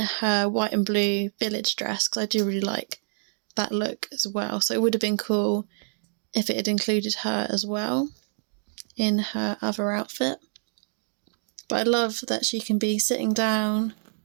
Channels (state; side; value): silent; left; digital silence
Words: white and blue village dress, because I do really like that look as well. So it would have been cool if it had included her as well in her other outfit. But I love that she can be sitting down